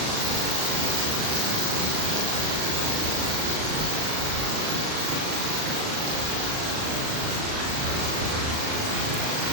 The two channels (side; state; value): left; late; 38 ms